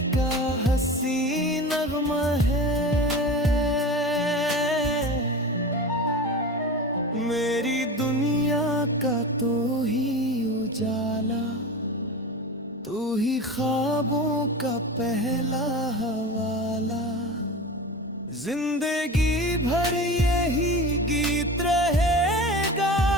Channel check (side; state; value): both; normal; correlation 0.30